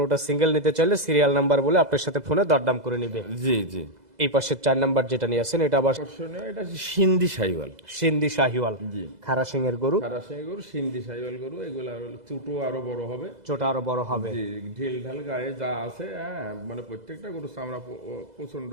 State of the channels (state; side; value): late; left; 2.0 ms